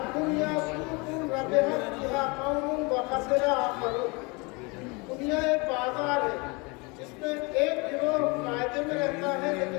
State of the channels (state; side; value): quieter; right; 28.2 dB